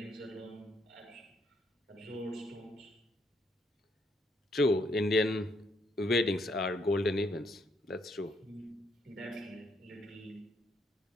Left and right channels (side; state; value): both; normal; correlation 0.72